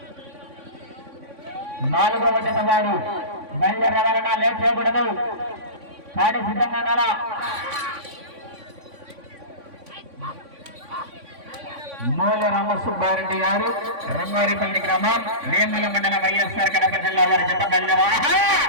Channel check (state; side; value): late; left; 3.5 ms